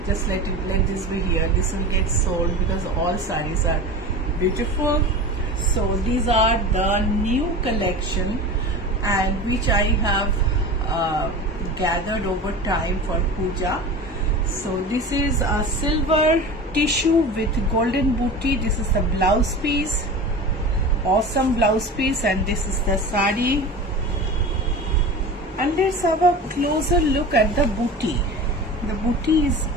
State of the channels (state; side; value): normal; both; correlation 0.32